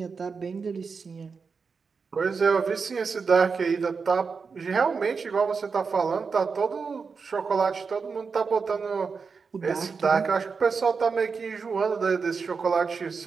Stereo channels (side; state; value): left; quieter; 5.2 dB